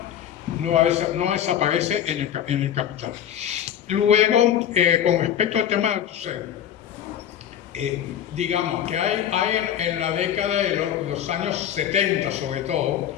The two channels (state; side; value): quieter; right; 10.1 dB